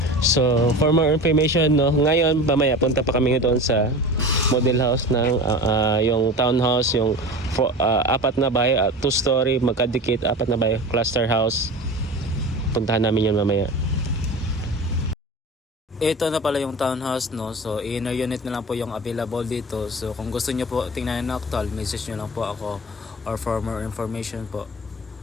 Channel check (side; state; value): both; normal; correlation 0.33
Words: So for more information, ngayon mamaya punta pa kami doon sa model house ng yung townhouse, yung 4 na bahay, 2-story magkadikit, 4 na bahay, cluster house. Puntahan namin yun mamaya. Ito na pala yung townhouse, so inner unit na lang po yung available dito. So kung gusto nyo po tingnan na actual, message nyo lang po ako or for more information po.